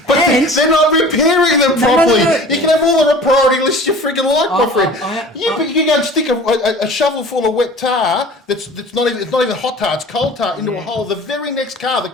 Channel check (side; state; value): both; normal; correlation 0.43